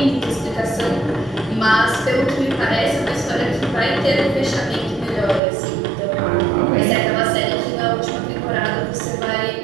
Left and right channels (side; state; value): left; drops out; at 5.4 s